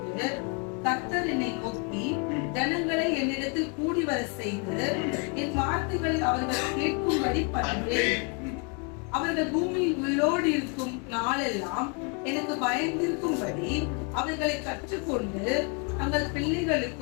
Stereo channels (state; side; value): quieter; right; 34.8 dB